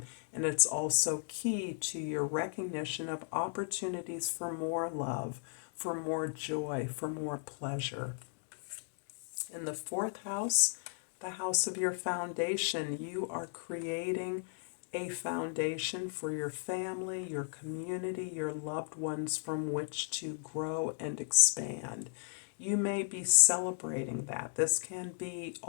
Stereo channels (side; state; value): right; silent; digital silence